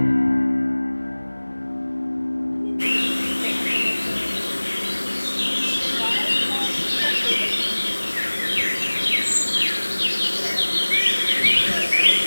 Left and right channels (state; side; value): inverted; both; correlation -1.00